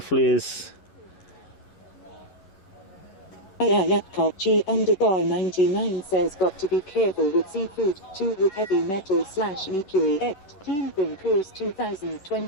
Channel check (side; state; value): right; late; 10 ms